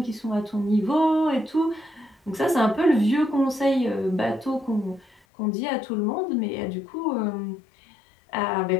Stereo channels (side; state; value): right; drops out; at 5.2 s